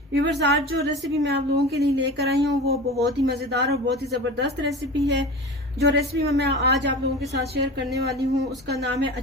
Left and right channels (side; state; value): both; normal; correlation 0.32